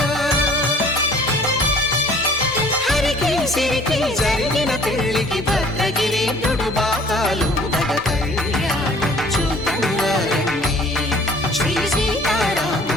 హరికి సిరికి జరిగిన పెళ్లికి భద్రగిరి బాకాలు నగ కళ్యాణం చూతమురారండి శ్రీ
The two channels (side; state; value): both; normal; correlation 0.53